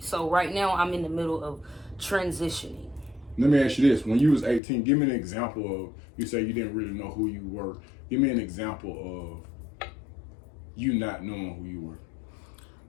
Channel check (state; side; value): drops out; right; at 4.6 s